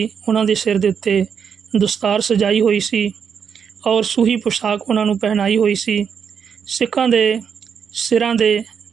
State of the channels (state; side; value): quieter; left; 7.1 dB